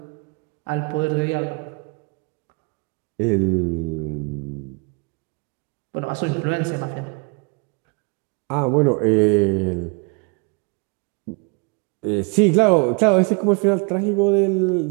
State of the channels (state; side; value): quieter; left; 32.0 dB